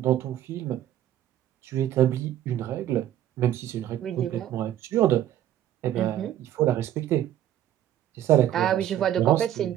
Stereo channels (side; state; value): left; quieter; 11.9 dB